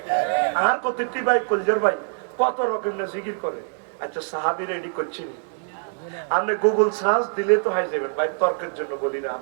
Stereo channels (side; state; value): left; silent; digital silence